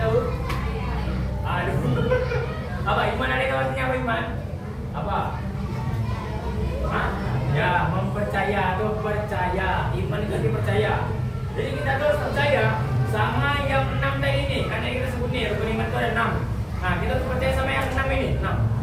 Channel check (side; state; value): both; identical; correlation 1.00